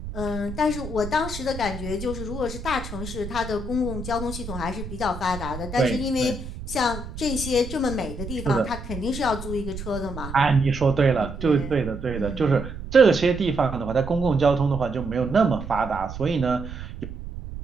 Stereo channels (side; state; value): right; noise; rumble, 9 dB below the sound